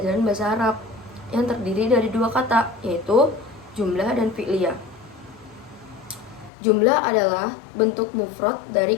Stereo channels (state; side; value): drops out; right; at 6.5 s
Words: bahasa Arab yang terdiri dari dua kata, yaitu jumlah dan fi'liyah. Jumlah adalah bentuk mufrad dari